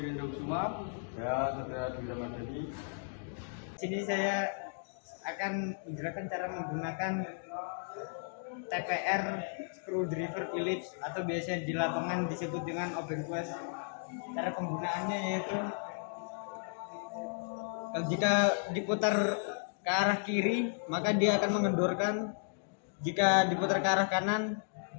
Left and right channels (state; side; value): silent; right; digital silence